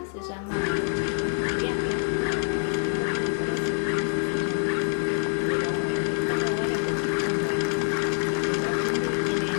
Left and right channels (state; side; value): silent; right; 60 dB below the other